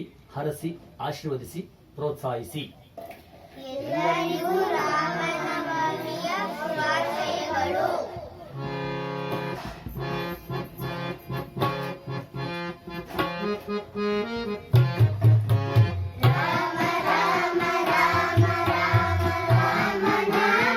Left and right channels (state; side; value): identical; both; correlation 1.00